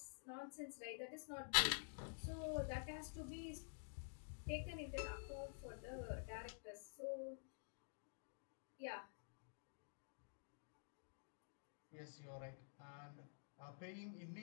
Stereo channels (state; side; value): silent; right; digital silence